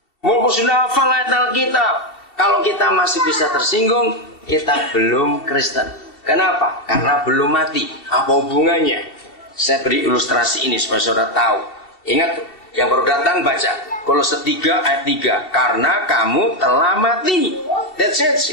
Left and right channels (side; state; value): right; late; 2.7 ms